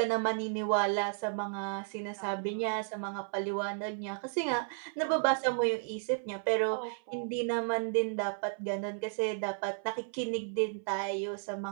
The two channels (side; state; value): left; silent; 56 dB below the other